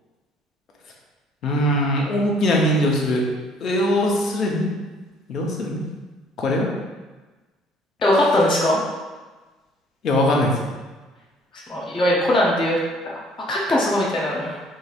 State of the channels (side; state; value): both; normal; correlation 0.59